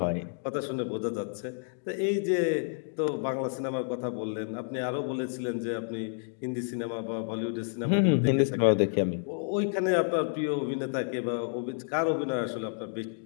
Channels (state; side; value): silent; right; digital silence